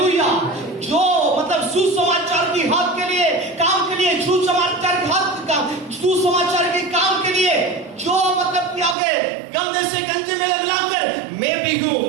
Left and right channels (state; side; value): drops out; left; at 9.0 s